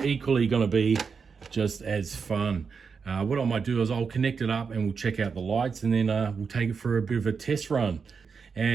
equally going to be just as fun. What I might do is I'll connect it up and we'll check out the lights, and then we'll take it for a bit of a test run.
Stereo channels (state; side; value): quieter; left; 5.6 dB